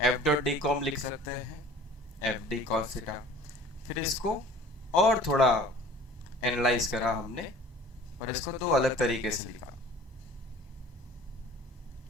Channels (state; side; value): normal; both; correlation 0.47